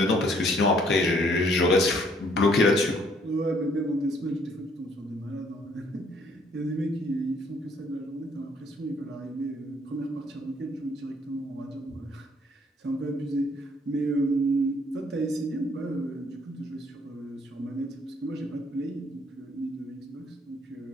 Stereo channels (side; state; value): both; normal; correlation 0.64